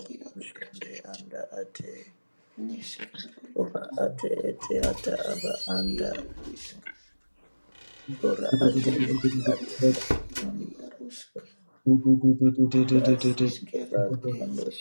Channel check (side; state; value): both; inverted; correlation -1.00